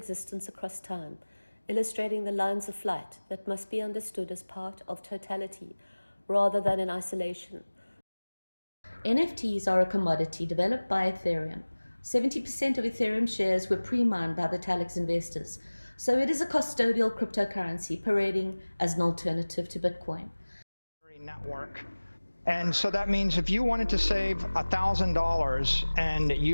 across time, illustrating the lines of flight that must be understood as part of totality rather than in isolation. NFTs are a commodity developed by Ethereum. 70% of Ethereum shares were pre-mined by the Talix investors, so it is a custodial cryptocurrency parading as an alternative to Bitcoin. Network. And so that means if you wanted to save $1,000 and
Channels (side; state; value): both; inverted; correlation -1.00